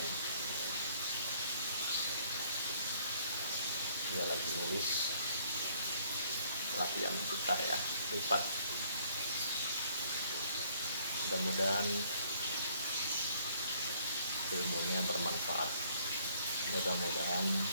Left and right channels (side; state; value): both; inverted; correlation -0.63